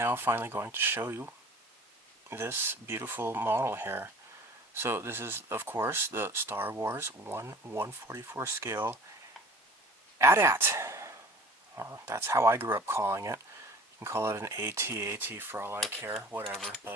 finally going to show you this beautiful model here. So this is, of course, the Star Wars 1/144 scale AT-AT. That's how I grew up calling it. You can call it an AT-AT for all I care, whatever.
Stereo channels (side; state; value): both; normal; correlation 0.45